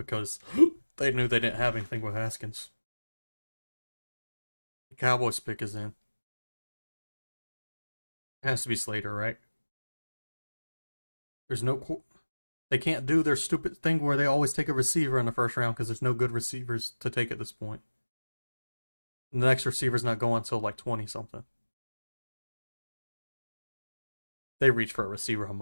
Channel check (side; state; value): both; inverted; correlation -1.00